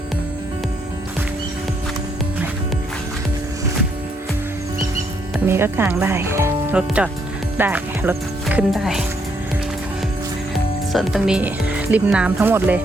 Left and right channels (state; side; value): normal; both; correlation 0.73